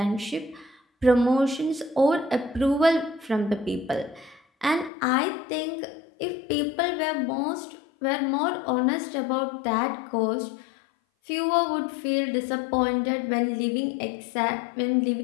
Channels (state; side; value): drops out; right; at 4.9 s